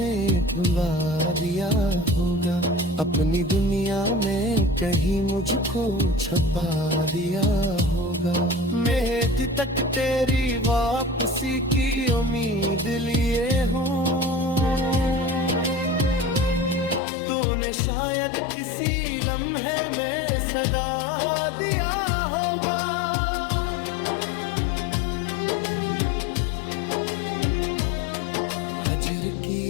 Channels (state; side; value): drops out; right; at 17.0 s